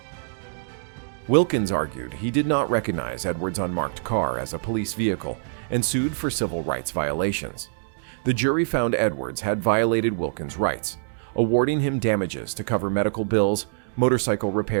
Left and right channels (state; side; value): silent; left; digital silence